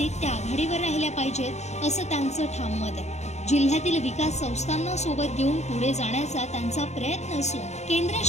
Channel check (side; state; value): right; late; 0.33 ms